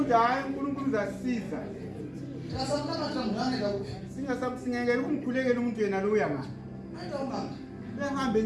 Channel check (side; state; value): both; identical; correlation 1.00